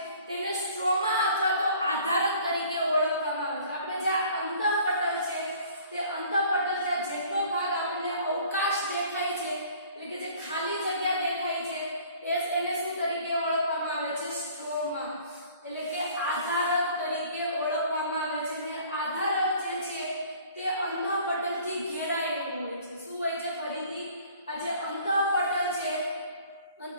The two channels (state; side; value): inverted; both; correlation -0.52